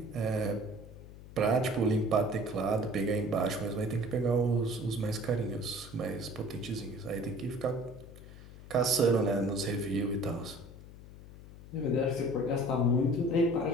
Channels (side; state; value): left; noise; hum, 17 dB below the sound